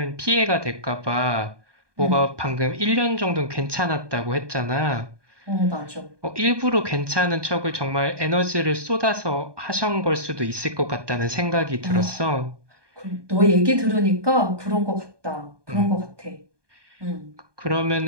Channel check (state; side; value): late; left; 1.2 ms